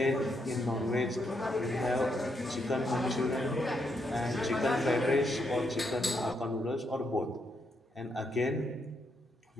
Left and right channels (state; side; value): normal; both; correlation 0.78